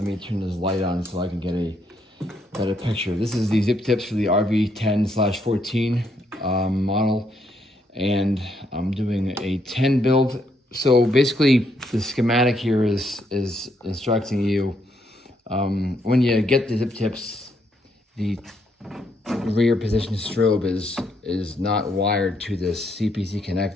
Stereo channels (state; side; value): normal; both; correlation 0.75